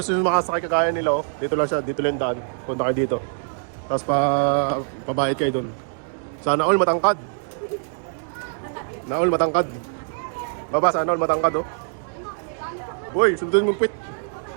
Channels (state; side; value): silent; left; 63 dB below the other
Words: nyo makasakay kagaya nila, oh, dito lang siya, dito lang yung daan. Punta kayo dito. Tapos pabayad kayo dun. Sana all matangkad. Na all matangkad. Baba, sana all matangkad oh. Uy, sundin mong pit.